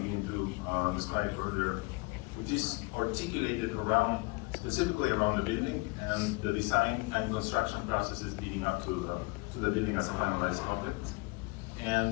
to describe earlier, which is articulated around, specifically around the building and the design and construction processes leading up to the building as a finalized object.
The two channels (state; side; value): quieter; right; 27.0 dB